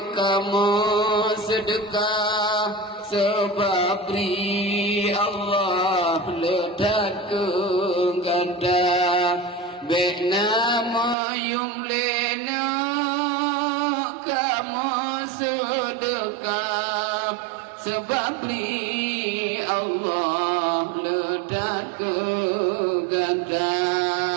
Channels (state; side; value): drops out; left; at 11.2 s